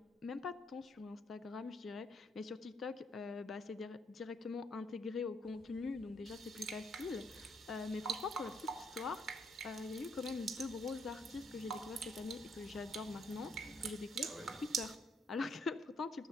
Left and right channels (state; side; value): normal; both; correlation 0.71